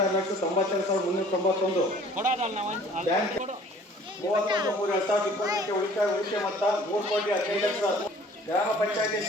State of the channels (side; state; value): both; normal; correlation 0.52